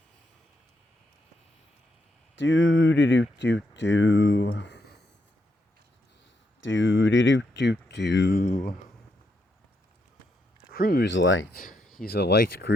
do do do do. Do do do do do. Cruise light. He's a light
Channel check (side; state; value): both; normal; correlation 0.80